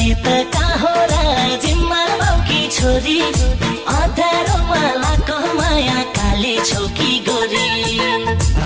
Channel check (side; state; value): both; identical; correlation 1.00